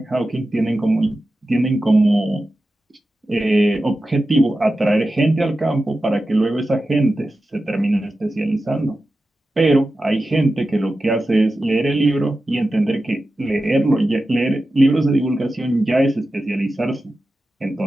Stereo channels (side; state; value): both; normal; correlation 0.93